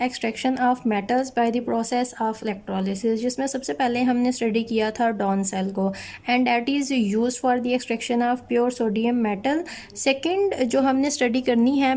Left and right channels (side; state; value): both; identical; correlation 1.00